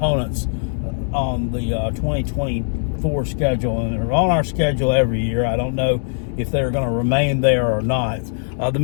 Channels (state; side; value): silent; right; 65 dB below the other